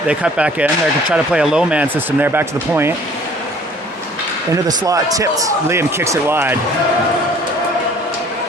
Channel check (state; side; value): normal; both; correlation 0.53